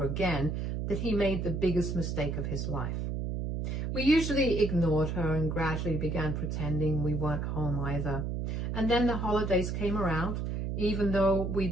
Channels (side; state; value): right; noise; hum, 2 dB below the sound